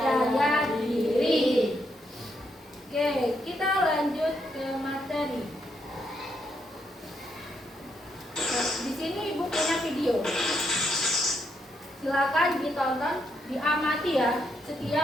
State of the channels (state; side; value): normal; both; correlation 0.78